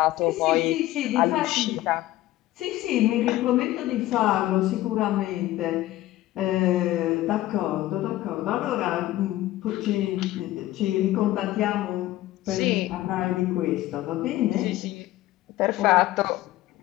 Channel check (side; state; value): right; quieter; 15.7 dB